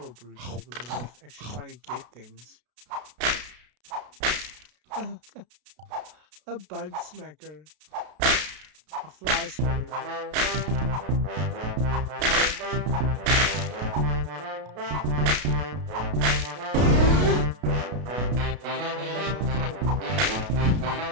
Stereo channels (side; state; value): left; late; 33 ms